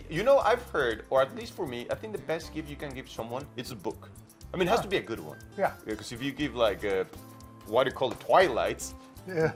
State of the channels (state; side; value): identical; both; correlation 1.00